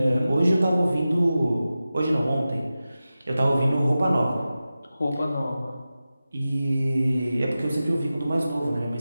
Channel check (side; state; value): both; inverted; correlation -0.94